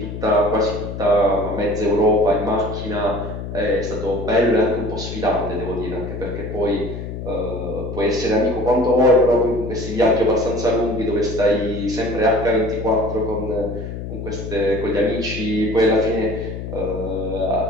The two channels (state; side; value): noise; left; hum, 7 dB below the sound